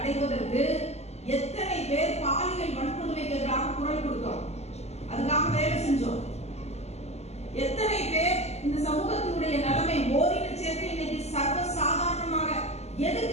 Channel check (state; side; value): late; right; 0.31 ms